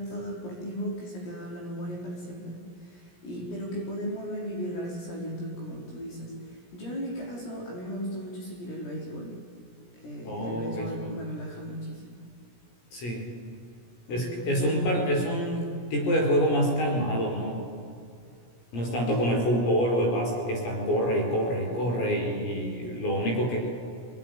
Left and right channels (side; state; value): right; late; 17 ms